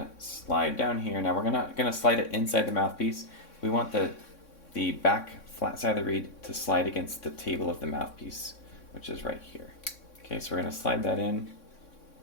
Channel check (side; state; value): right; late; 3.6 ms